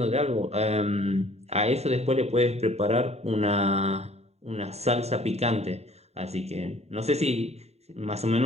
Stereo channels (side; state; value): left; late; 0.31 ms